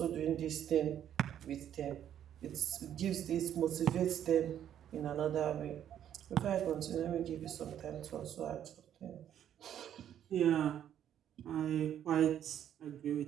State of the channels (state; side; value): quieter; left; 10.2 dB